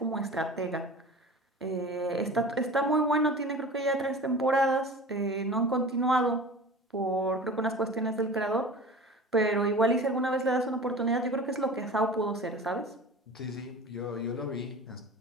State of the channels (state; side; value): normal; both; correlation 0.37